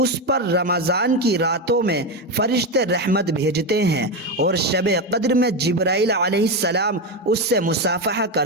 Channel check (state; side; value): normal; both; correlation 0.12